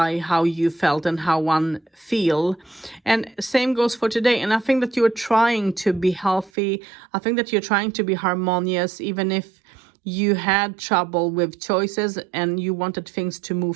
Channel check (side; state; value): left; drops out; at 6.5 s